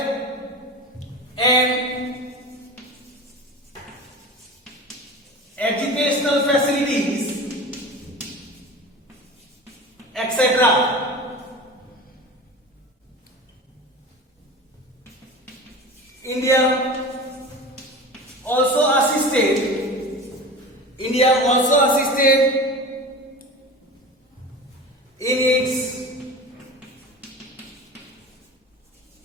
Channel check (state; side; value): normal; both; correlation 0.33